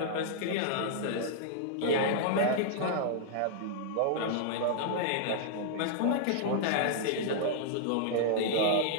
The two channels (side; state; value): both; different; correlation -0.01